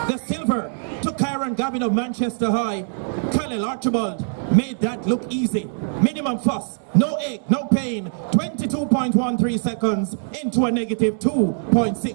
The silver to Kyron Gavin of Manchester High. Khalil Archibald made that look easy. Minimum fuss, no ache, no pain. 22.13 seconds into a negative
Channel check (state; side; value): silent; left; digital silence